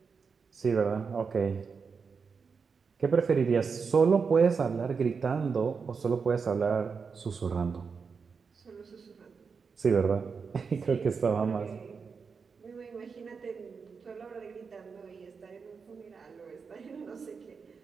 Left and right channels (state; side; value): quieter; left; 5.5 dB